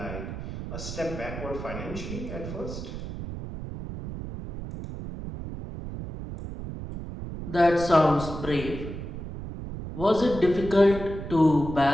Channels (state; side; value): noise; right; rumble, 8 dB below the sound